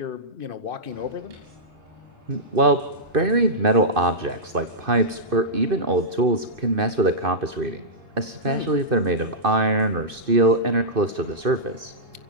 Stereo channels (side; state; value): left; late; 2.5 ms